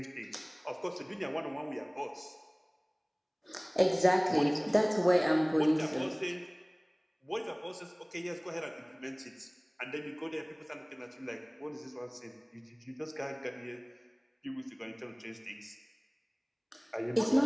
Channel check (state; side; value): identical; both; correlation 1.00